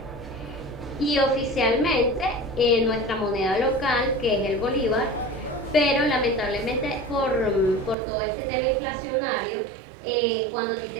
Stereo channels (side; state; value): left; drops out; at 8.0 s